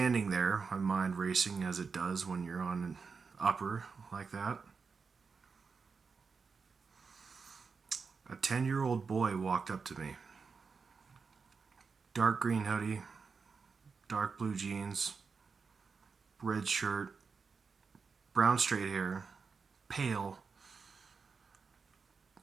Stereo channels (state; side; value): quieter; left; 5.1 dB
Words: there, my mind racing as it does when you're on an upper like that, a 10-year-old boy walked up to me. Dark green hoodie, dark blue jeans, red shirt, brown straight hair, pale.